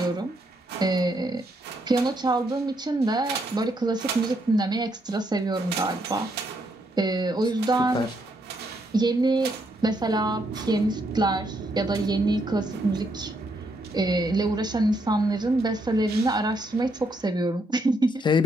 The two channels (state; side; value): normal; both; correlation 0.76